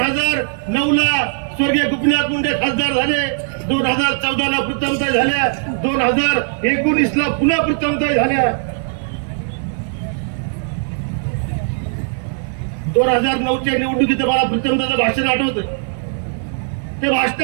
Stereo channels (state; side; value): silent; left; 56 dB below the other